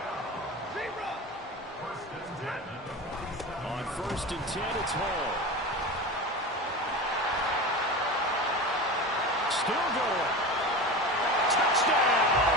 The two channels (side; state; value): both; normal; correlation 0.28